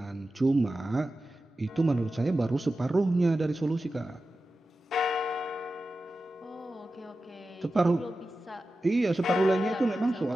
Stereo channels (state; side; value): normal; both; correlation 0.93